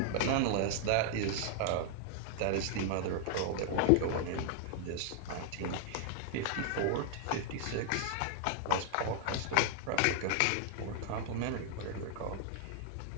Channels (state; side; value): different; both; correlation 0.00